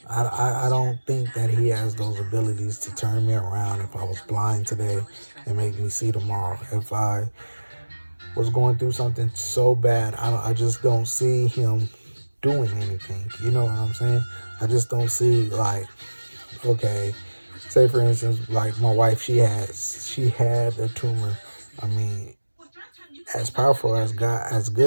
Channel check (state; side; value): inverted; both; correlation -1.00